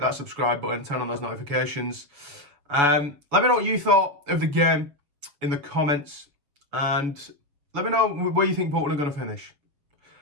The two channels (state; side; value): late; left; 7.0 ms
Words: subscribe button, turn on those notifications. Let me know what you thought of the game in the comments, and let me know where you think Bolton are going to finish